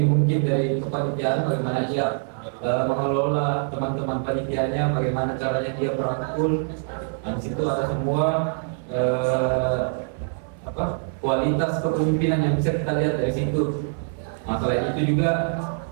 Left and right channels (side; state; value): left; silent; 56 dB below the other